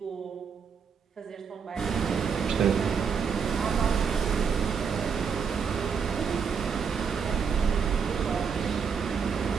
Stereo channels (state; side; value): quieter; left; 6.3 dB